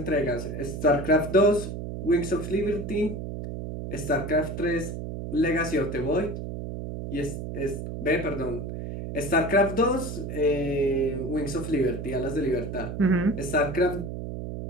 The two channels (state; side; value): noise; right; hum, 6 dB below the sound